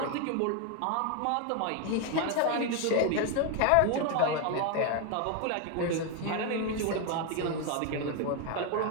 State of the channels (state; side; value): different; both; correlation 0.01